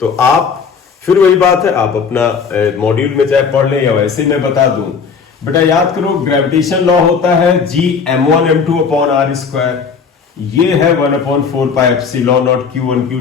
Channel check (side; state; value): right; quieter; 5.8 dB